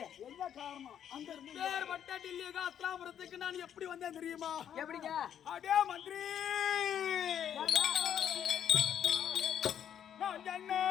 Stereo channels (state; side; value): quieter; right; 9.4 dB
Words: என்ன காரணம்? அங்க இருந்து பேர் பட்ட டில்லியாக அஸ்தினாபுரத்துக்கு நான் எப்படி வந்தேன் தெரியுமா? எப்படிங்க? அடே மந்திரி, நான் என்ன